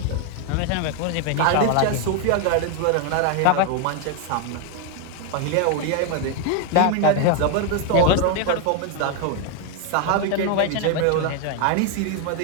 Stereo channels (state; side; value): different; both; correlation 0.01